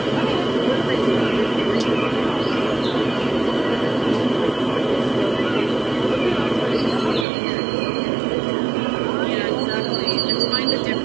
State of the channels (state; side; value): drops out; left; at 7.2 s